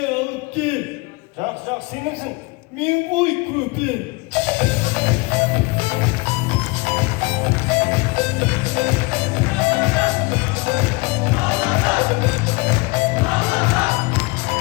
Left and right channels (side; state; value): right; quieter; 25.7 dB